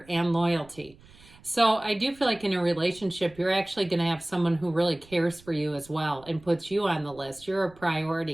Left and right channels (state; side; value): noise; right; rumble, 25 dB below the sound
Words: and loyalty. So I do feel like in a relationship, you're actually going to have someone who really cares for you as well and puts you on the list. You're a